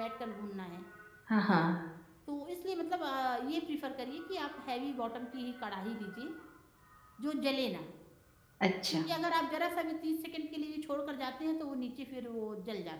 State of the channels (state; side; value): identical; both; correlation 1.00